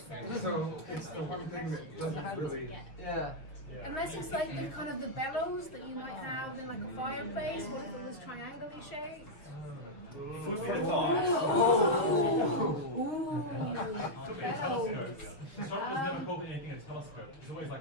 it's the one thing that doesn't really. Yeah. Unless it's like the kind of the bellows that you might have in like a fireplace. What if it was triangularly shaped? Food for thought. Bellows. Astronomers never called anything a telescope. It's always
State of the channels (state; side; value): late; right; 6.3 ms